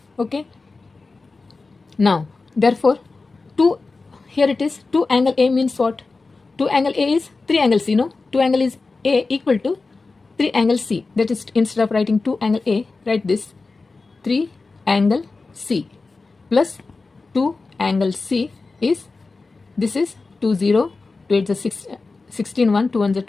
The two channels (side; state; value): right; quieter; 3.9 dB